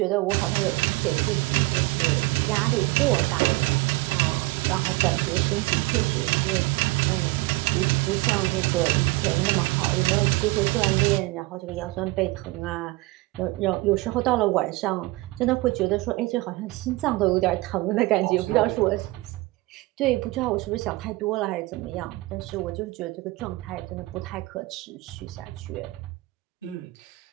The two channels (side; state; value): left; quieter; 21.2 dB